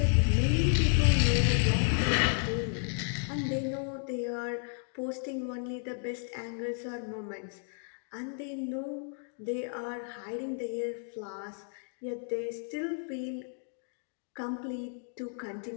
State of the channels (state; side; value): silent; right; 56 dB below the other